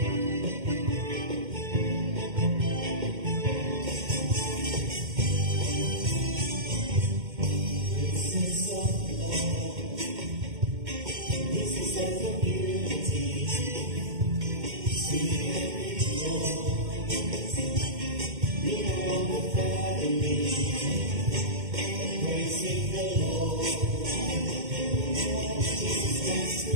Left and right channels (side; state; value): left; late; 2.1 ms